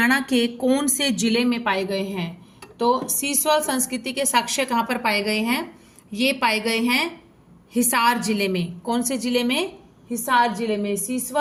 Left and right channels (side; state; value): both; identical; correlation 1.00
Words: के कौन से जिले में पाए गए हैं? तो सीसवाल संस्कृति के साक्ष्य कहाँ पर पाए गए हैं? ये पाए गए हैं हिसार जिले में. कौन से जिले में? हिसार जिले में.